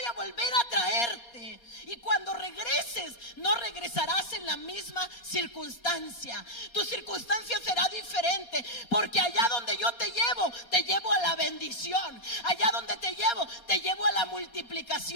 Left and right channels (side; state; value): right; late; 4.2 ms